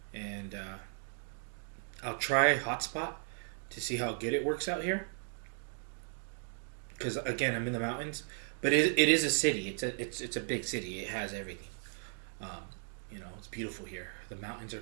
And I'll try Hotspot to see how good it works out here. Because again, I'm in the mountains, but it is a city. It's a big city. It has everything. It's beautiful here. The mountains are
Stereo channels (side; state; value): left; silent; 54 dB below the other